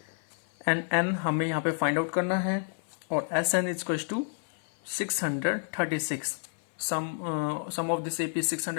एंड n हमें यहाँ पे फाइंड आउट करना है, और S n is to 636. Sum of this AP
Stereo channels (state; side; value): silent; right; 58 dB below the other